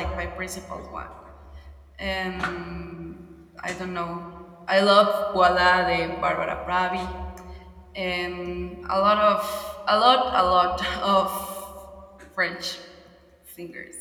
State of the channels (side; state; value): both; identical; correlation 1.00